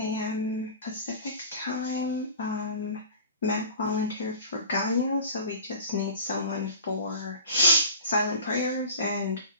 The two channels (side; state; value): both; inverted; correlation -0.40